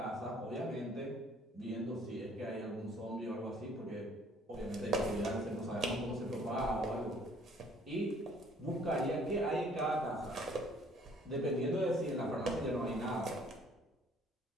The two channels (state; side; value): normal; both; correlation 0.59